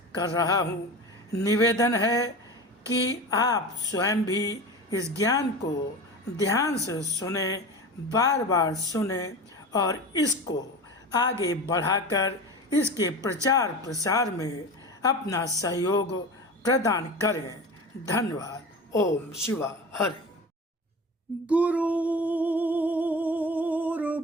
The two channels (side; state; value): both; normal; correlation 0.31